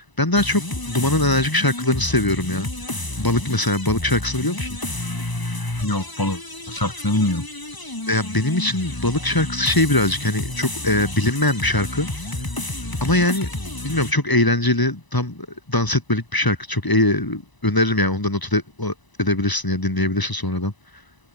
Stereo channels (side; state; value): right; late; 1.0 ms